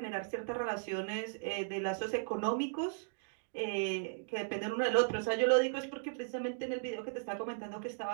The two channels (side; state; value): left; silent; digital silence